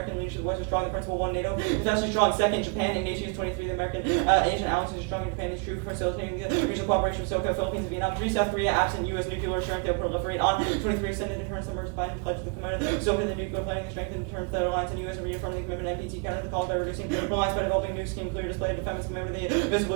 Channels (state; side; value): quieter; left; 34.8 dB